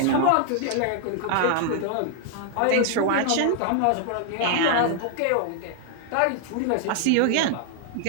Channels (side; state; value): both; different; correlation 0.00